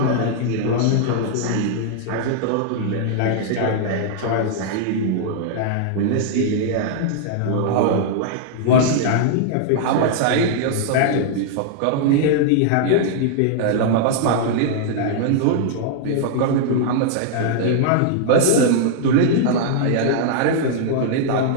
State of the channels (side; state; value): both; different; correlation -0.01